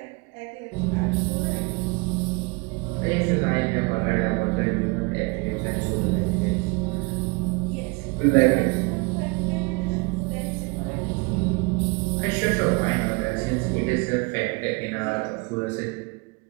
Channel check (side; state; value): left; quieter; 28.5 dB